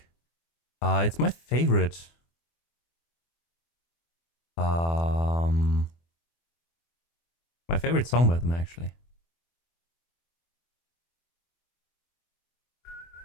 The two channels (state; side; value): late; right; 24 ms